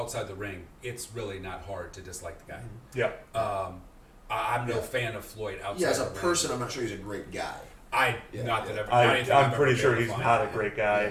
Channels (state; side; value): identical; both; correlation 1.00